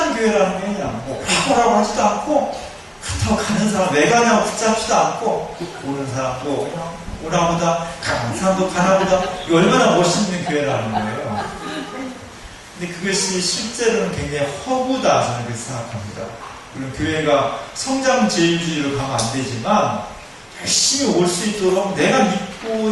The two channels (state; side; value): identical; both; correlation 1.00